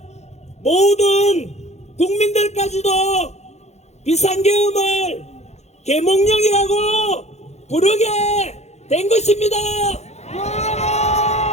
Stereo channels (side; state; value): right; late; 0.32 ms